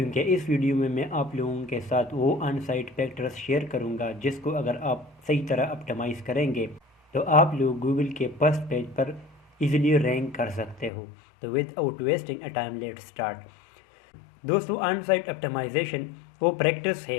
اس ویڈیو میں آپ لوگوں کے ساتھ وہ آن سائٹ فیکٹرز شیئر کروں گا جس کو اگر آپ صحیح طرح اپٹمائز کریں گے تو آپ لوگ گوگل کے فرسٹ پیج پر ایزیلی رینک کر سکتے ہو۔ تو without wasting a time let start. دوستو، آن سائٹ اپٹمائزیشن وہ پریکٹس ہے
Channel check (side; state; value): right; drops out; at 10.9 s